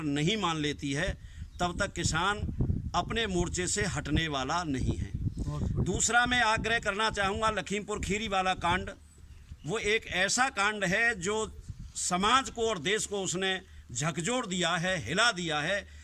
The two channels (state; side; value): identical; both; correlation 1.00